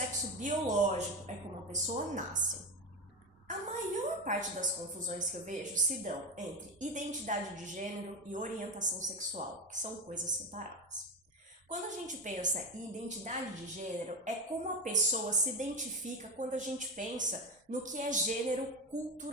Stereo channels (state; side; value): normal; both; correlation 0.17